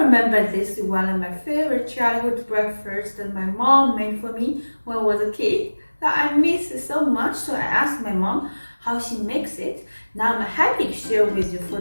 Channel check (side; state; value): both; inverted; correlation -1.00